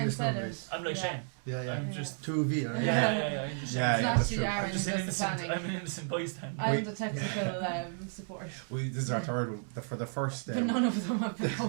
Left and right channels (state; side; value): silent; left; 56 dB below the other